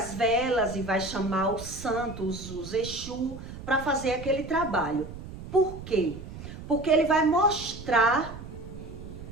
velas e vai chamar os santos, os Exu, para fazer aquele trabalho. Por quê? Porque ele vai mostrar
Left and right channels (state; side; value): noise; right; rumble, 12 dB below the sound